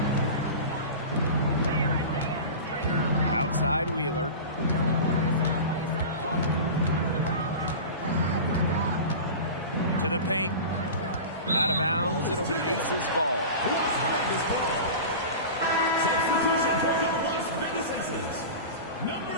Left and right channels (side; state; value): both; inverted; correlation -0.31